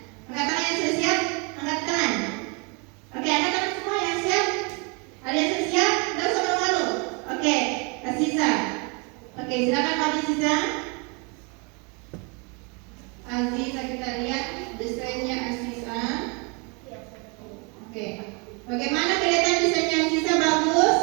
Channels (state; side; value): quieter; left; 32.6 dB